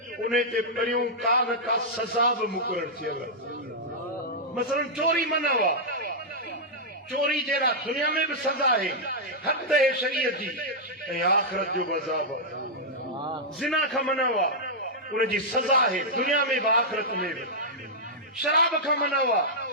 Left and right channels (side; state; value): both; normal; correlation -0.07